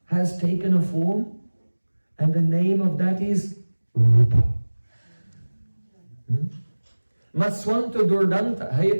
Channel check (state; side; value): inverted; both; correlation -1.00